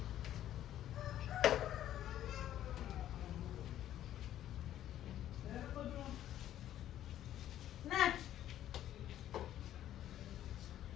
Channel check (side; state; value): right; quieter; 12.0 dB